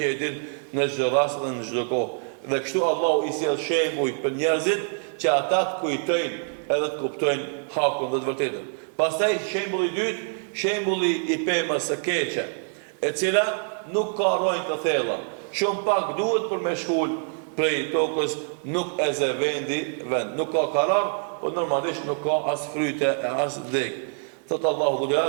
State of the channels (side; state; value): left; silent; 61 dB below the other